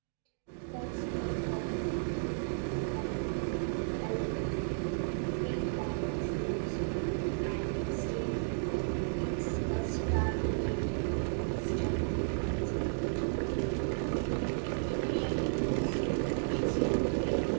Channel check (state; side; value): silent; left; digital silence